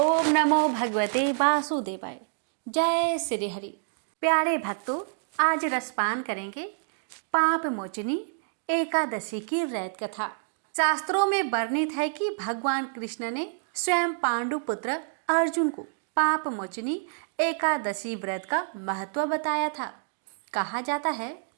नमो भगवते वासुदेवाय। जय श्री हरि। प्यारे भक्तों, आज रसपान करेंगे पाप मोचनी एकादशी की रैत कथा। शास्त्रों में वर्णित है कि भगवान कृष्ण ने स्वयं पांडु पुत्र अर्जुन को पाप मोचनी एकादशी व्रत का महत्व बताया था। कहा जाता है,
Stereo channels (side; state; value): left; silent; digital silence